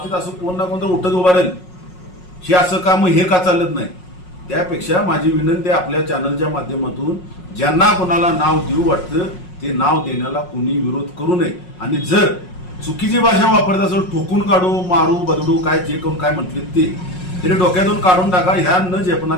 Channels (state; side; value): late; right; 5.5 ms